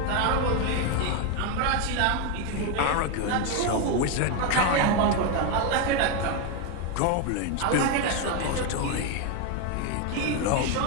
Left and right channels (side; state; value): both; different; correlation 0.02